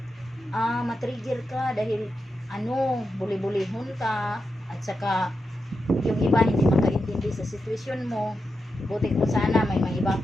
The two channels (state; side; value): normal; both; correlation 0.88